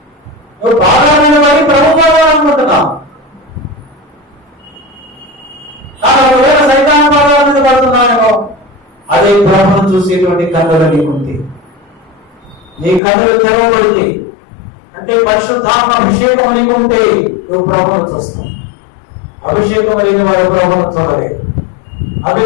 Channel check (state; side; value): drops out; right; at 13.0 s